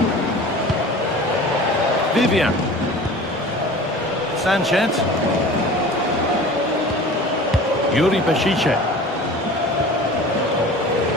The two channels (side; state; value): both; normal; correlation 0.40